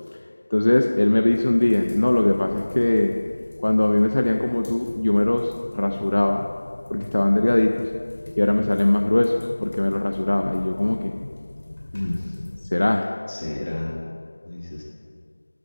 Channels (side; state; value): both; inverted; correlation -1.00